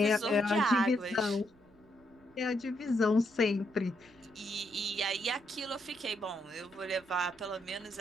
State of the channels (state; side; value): noise; right; rumble, 30 dB below the sound